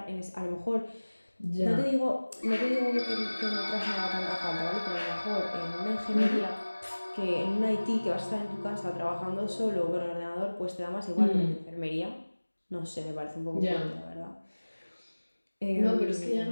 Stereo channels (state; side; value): inverted; both; correlation -1.00